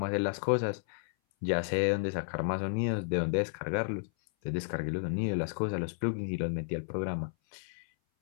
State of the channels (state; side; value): silent; right; 56 dB below the other